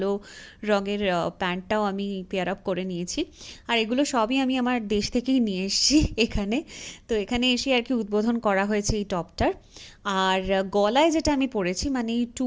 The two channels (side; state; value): both; identical; correlation 1.00